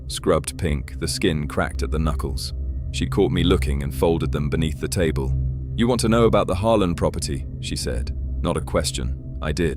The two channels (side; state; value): both; identical; correlation 1.00